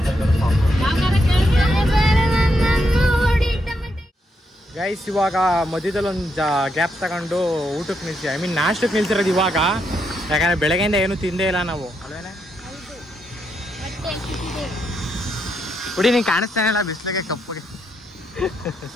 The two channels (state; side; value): normal; both; correlation 0.80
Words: ಗೈಸ್ ಇವಾಗ ಮಧ್ಯದಲ್ಲಿ ಒಂದು ಗ್ಯಾಪ್ ತಗೊಂಡು ಊಟಕ್ಕೆ ನಿಲ್ಸಿ, ನಾಷ್ಟಕ್ಕೆ ನಿಲ್ಸಿರೋದು ಇವಾಗ. ಯಾಕಂದ್ರೆ ಬೆಳಗ್ಗೆಯಿಂದ ಏನು ತಿಂದೇ ಇಲ್ಲ ನಾವು, ಅಲ್ವೇನೆ? ಹುಡಿ ನೀನು ಕಾಣಿಸ್ತಾನೆ ಇಲ್ಲ ಬಿಸಿಲಿಗೆ ಕಪ್ಪಗೆ.